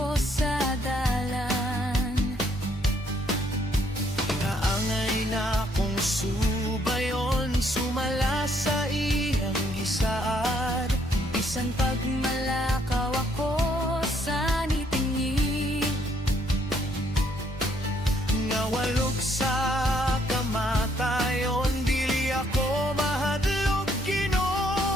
sa dalan. Naangay na akong subayon, sumala sa iyang gisaad. Bisan pagmalakaw ako sa nitingi, Nga walog sa kamatayon, dili ako mahadlok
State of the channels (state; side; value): normal; both; correlation 0.69